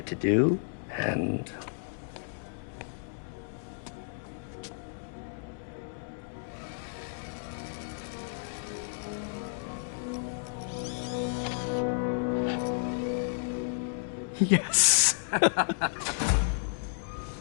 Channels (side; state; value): right; silent; digital silence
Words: to do, and... Yes.